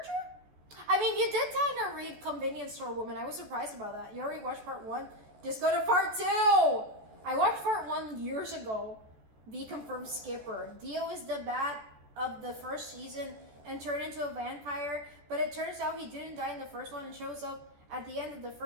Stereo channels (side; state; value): left; late; 14 ms